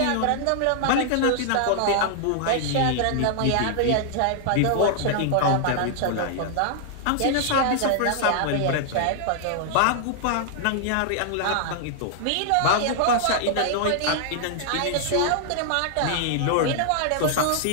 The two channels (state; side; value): different; both; correlation -0.01